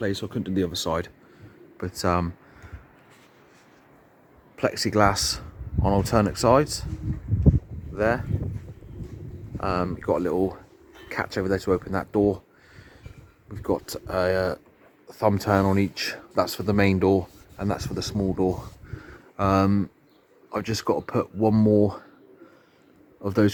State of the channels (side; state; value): both; identical; correlation 1.00